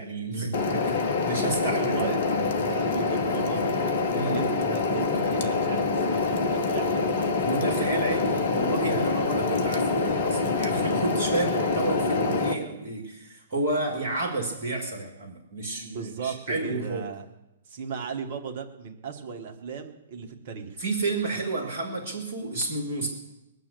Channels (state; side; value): inverted; both; correlation -0.43